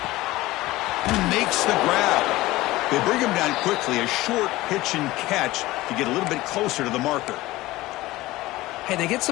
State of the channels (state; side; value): quieter; right; 18.3 dB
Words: He makes the grab. They bring him down quickly. A short pitch and catch to get a little bit closer to the marker. Hey, they get